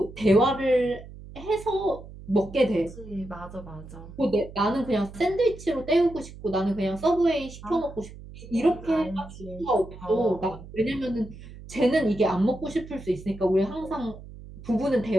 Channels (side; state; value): right; noise; hum, 16 dB below the sound